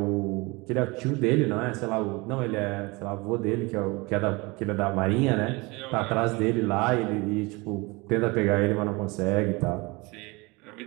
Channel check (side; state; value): left; quieter; 25.2 dB